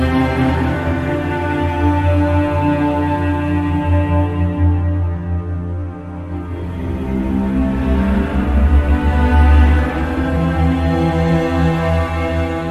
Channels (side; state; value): both; identical; correlation 1.00